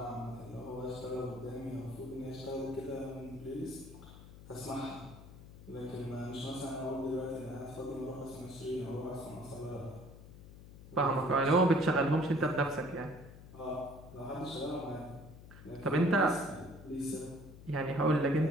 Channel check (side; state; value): left; noise; hum, 17 dB below the sound